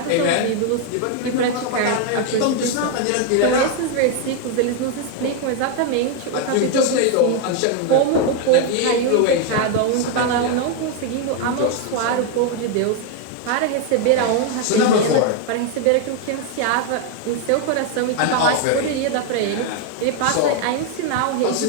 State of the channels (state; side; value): different; both; correlation 0.01